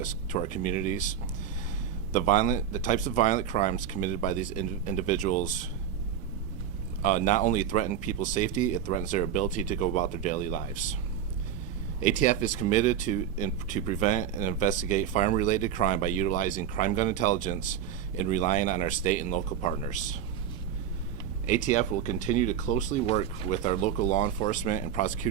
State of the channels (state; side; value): quieter; left; 9.0 dB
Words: to our communities The types of violent crimes committed by these individuals not only threaten people's safety, it threatens their ability to go about their daily lives. ATF is committed to prevent and investigate firearm-related crime by utilizing crime gun intelligence and relying on our state and local partners. ATF will continue to closely work with our local law enforcement and